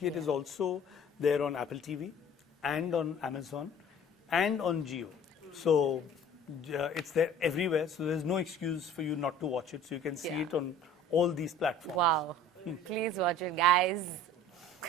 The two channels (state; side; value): normal; both; correlation 0.47